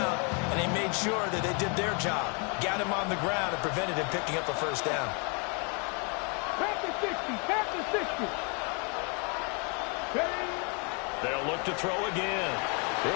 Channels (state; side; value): quieter; right; 35.6 dB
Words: and they made sure that they did their job. Got him on the ground and prevented him picking up a 1st down. Past the 60, past the 60. They'll look to throw again.